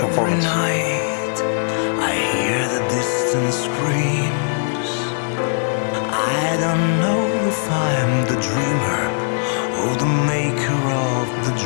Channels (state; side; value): silent; right; digital silence